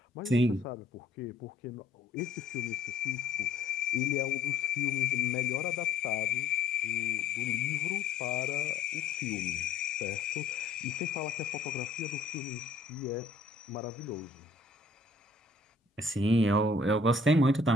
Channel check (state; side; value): quieter; right; 3.2 dB